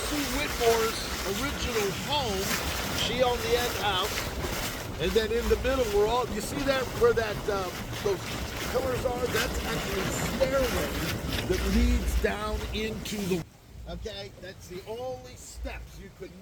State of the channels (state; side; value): identical; both; correlation 1.00